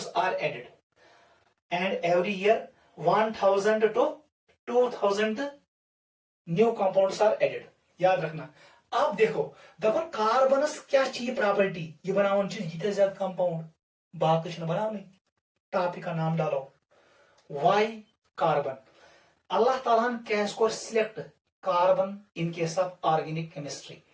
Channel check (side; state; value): both; identical; correlation 1.00